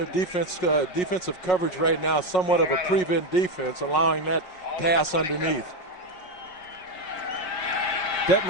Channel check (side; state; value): right; late; 5.5 ms